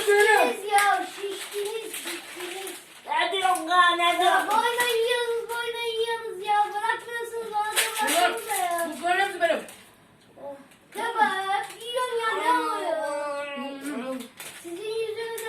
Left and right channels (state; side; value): identical; both; correlation 1.00